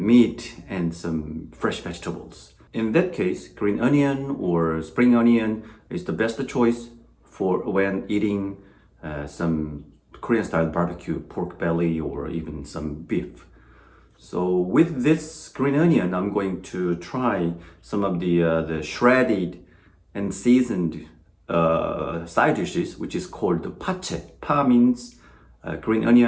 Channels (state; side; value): identical; both; correlation 1.00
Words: and some fresh vegetables. In that case, green onion or spring onion is the best choice for when eating some Korean style barbecue, pork belly, or even some beef. So with this green onion, I'm going to try some of the shredded and seasoned side dishes, which is called pachae. Pa means green